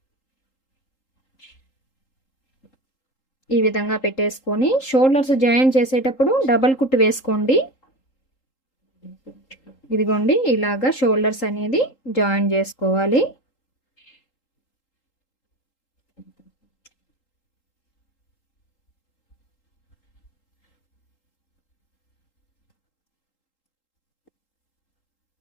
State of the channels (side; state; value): right; late; 3.8 ms